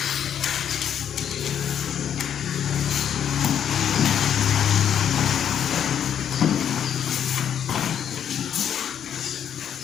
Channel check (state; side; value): quieter; right; 9.1 dB